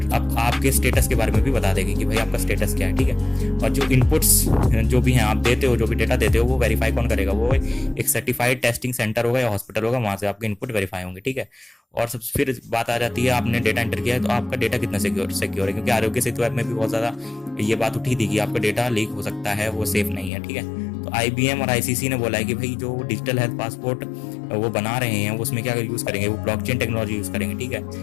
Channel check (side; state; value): right; drops out; at 20.3 s